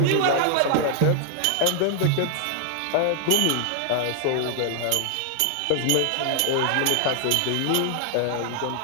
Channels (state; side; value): different; both; correlation 0.00